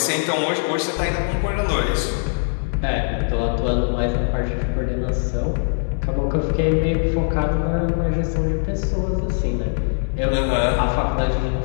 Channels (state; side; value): silent; right; digital silence